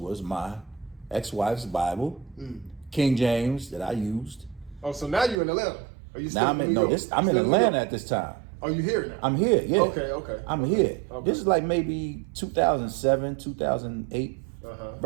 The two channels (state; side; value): drops out; left; at 5.4 s